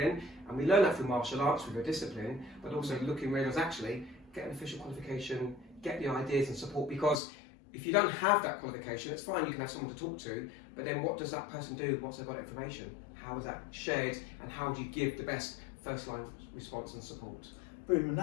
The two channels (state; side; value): drops out; right; at 7.2 s